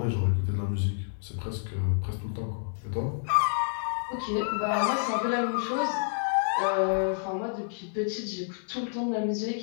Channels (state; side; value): silent; right; digital silence